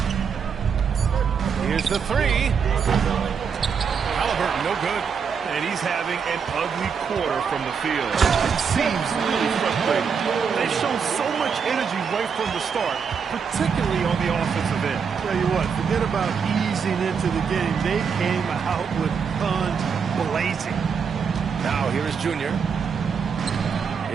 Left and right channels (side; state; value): left; quieter; 6.4 dB